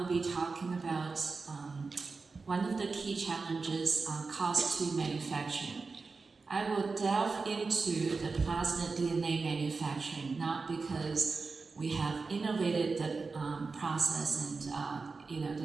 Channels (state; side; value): quieter; left; 4.3 dB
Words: be talking about one of the key challenges, cost to manufacturing. I will delve into the plasmid DNA manufacturing, not because we have innovated the process and